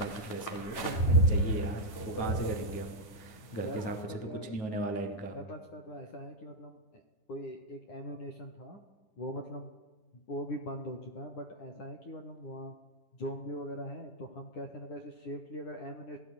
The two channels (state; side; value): late; right; 9.9 ms